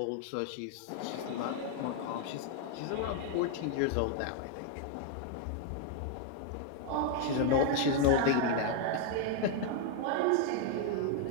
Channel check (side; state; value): both; different; correlation 0.00